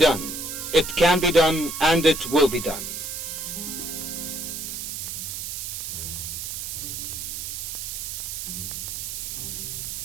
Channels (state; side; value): noise; right; hiss, 5 dB below the sound